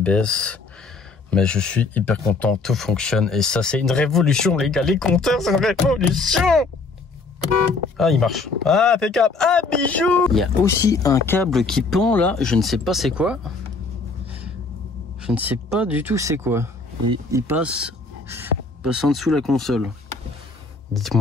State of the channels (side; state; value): right; quieter; 3.9 dB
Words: Mais je suis hyper content, tout fonctionne. Et ça, c'est une révolution, les gars. Les compteurs, c'est une révolution. Ah, il marche. Ah, impeccable. Ah, bijou. Il y a aussi un câble qui pend là. Je ne sais pas c'est quoi. Je ne sais pas du tout c'est quoi. Il passe en dessous la console.